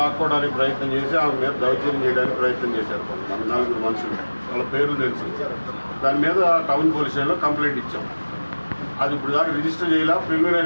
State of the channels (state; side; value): inverted; both; correlation -1.00